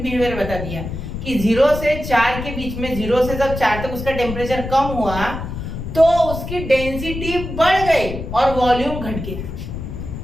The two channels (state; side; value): noise; left; rumble, 7 dB below the sound